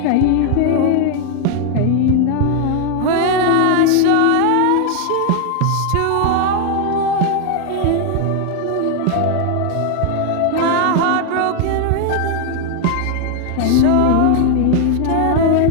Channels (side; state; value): both; different; correlation 0.00